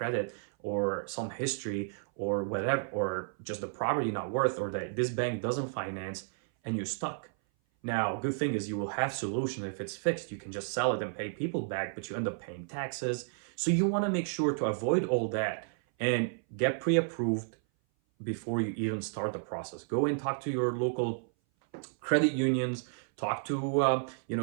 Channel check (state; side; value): silent; left; 56 dB below the other